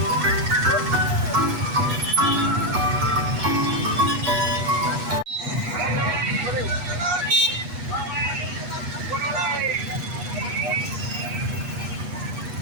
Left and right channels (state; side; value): late; left; 8.2 ms